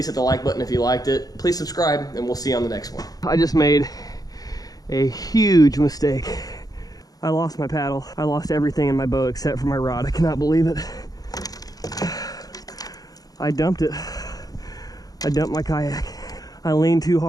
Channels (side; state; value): right; late; 0.18 ms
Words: hit the like button if you liked it. Please subscribe, and we'll see you on the next one. I just made a huge mistake. I lost my paddle. I lost everything in my boat except for my rod. I cannot believe it. I dumped it. I dumped my kayak. I leaned too